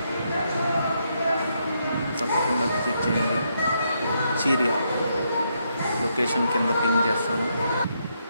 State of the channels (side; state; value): both; inverted; correlation -0.78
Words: తప్పకుండా విజిట్ చేయండి. చీరియా లొకేషన్ కింద పింగ్ చేస్తాను,